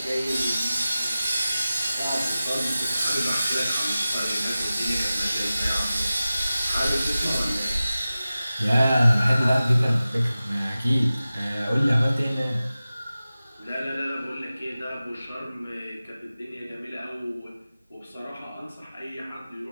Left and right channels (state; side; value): inverted; both; correlation -0.96